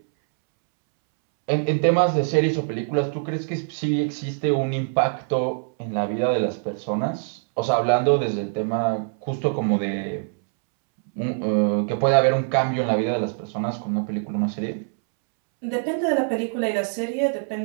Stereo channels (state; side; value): silent; left; 63 dB below the other